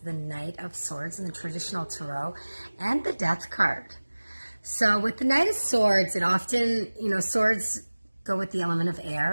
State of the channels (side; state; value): both; inverted; correlation -1.00